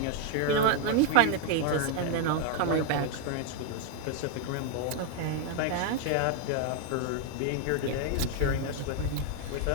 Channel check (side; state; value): both; different; correlation 0.00